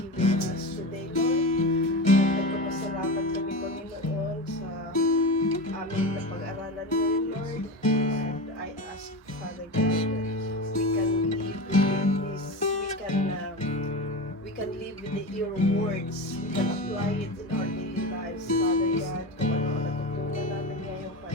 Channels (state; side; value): normal; both; correlation 0.24